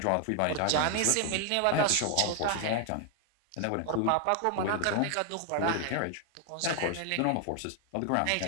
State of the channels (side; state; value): both; different; correlation 0.00